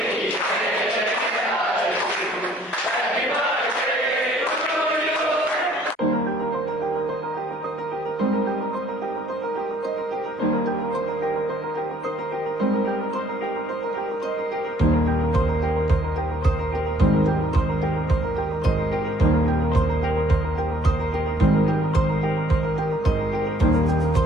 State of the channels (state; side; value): normal; both; correlation 0.62